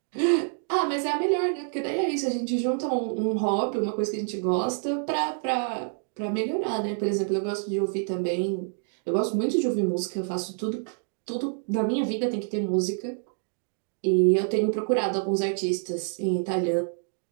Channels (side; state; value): left; silent; 60 dB below the other